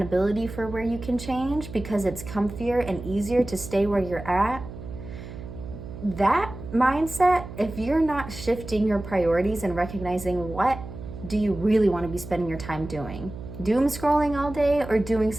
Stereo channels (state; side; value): noise; right; hum, 12 dB below the sound